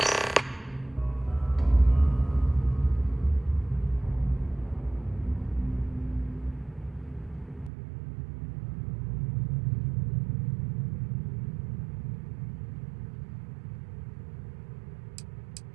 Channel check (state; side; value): drops out; left; at 7.7 s